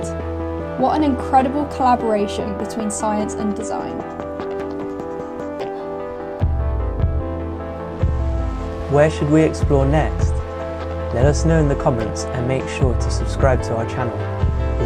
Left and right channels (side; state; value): both; identical; correlation 1.00